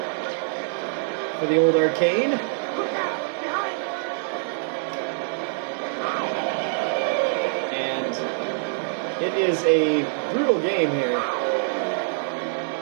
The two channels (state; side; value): silent; left; 62 dB below the other